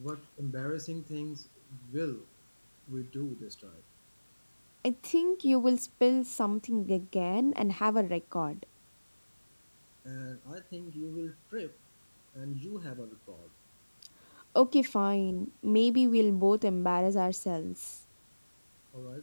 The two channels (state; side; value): inverted; both; correlation -1.00